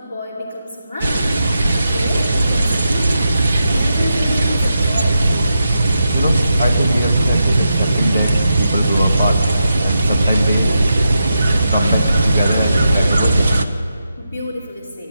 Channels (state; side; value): inverted; both; correlation -0.86